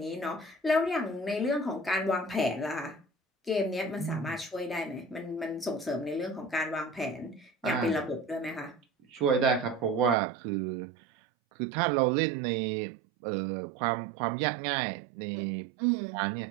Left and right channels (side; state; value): left; drops out; at 10.2 s